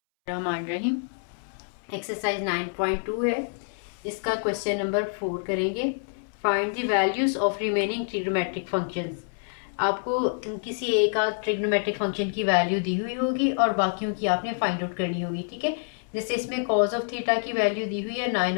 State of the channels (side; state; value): right; silent; 60 dB below the other